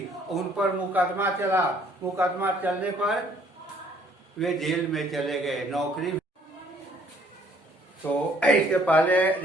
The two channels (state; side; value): normal; both; correlation 0.62